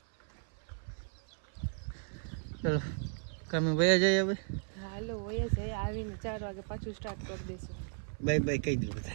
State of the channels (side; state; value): left; silent; 54 dB below the other